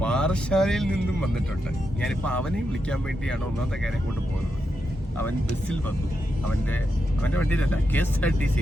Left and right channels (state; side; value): normal; both; correlation 0.85